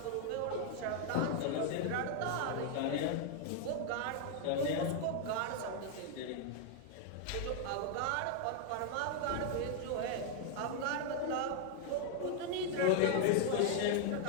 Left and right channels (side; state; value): both; different; correlation 0.00